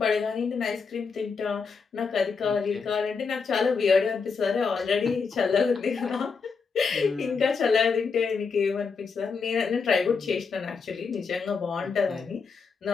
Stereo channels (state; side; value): quieter; right; 5.2 dB